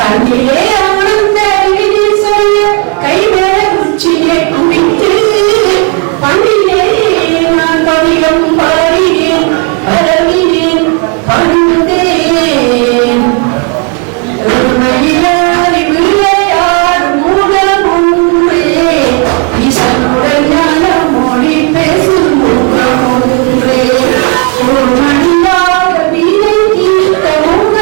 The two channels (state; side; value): quieter; left; 36.1 dB